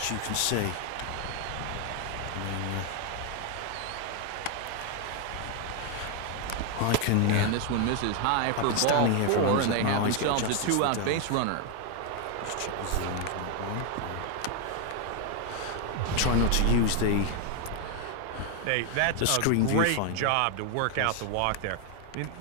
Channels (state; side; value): different; both; correlation 0.01